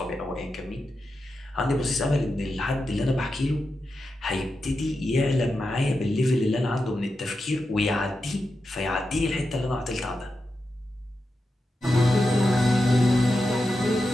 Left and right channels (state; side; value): normal; both; correlation 0.89